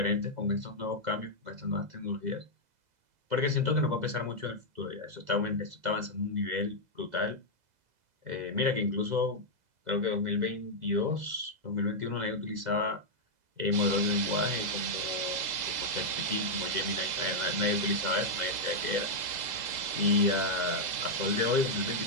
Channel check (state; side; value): late; left; 2.0 ms